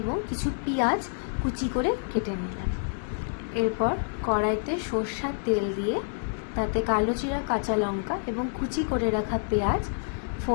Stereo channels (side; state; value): right; silent; 59 dB below the other